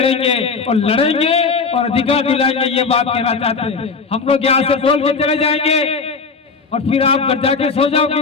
और अधिकार दिलाएंगे, ये बात कहना चाहते हैं। हम लोग यहाँ से बोल के चले जाएंगे और फिर आप घर जाके सो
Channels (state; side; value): quieter; right; 4.8 dB